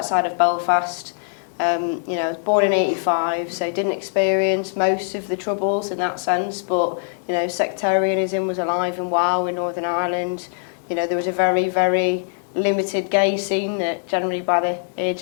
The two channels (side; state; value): right; silent; digital silence